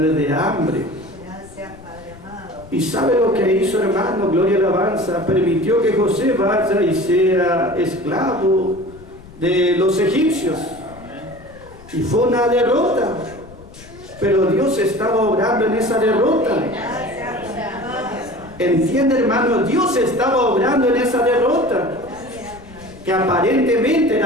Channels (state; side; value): noise; left; rumble, 20 dB below the sound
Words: de hambre? ¿Y sabe lo que hizo, hermano? Gloria y alabanza. Permitió que José vaya y sea esclavo de los egipcios. Y fue una derrota, pero Dios estaba obrando en esa derrota. ¿Entiende, hermano? Dios estaba obrando en esa derrota, que aparentemente